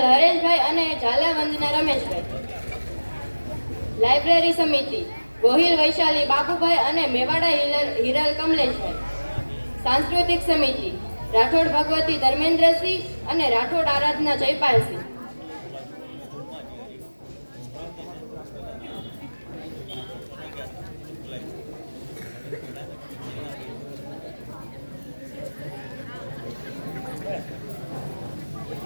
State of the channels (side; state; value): both; inverted; correlation -1.00